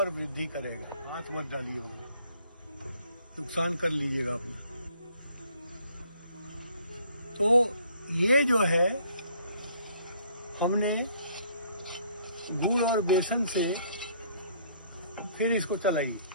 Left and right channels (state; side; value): inverted; both; correlation -0.62